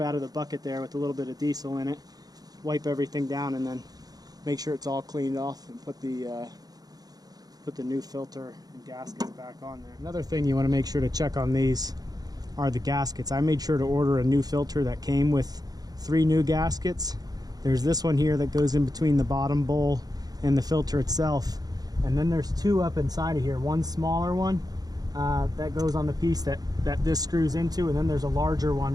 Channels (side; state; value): left; late; 0.19 ms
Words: out of the bucket there with a little bit of diesel in it, wipe everything down, and then make sure it's all cleaned off and put the new filter and gaskets back on there. Another thing you want to make sure to check on these are the gaskets. I made sure to order a new filter that came with 3 new gaskets. There's this one here that goes in between the bottom bowl and the filter itself. And then there's 2 up inside of here. One smaller one that goes on the piece that this screws into, and then there's a larger